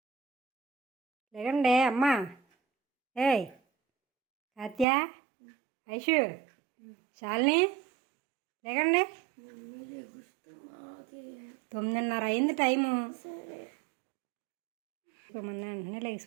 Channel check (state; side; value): drops out; left; at 4.9 s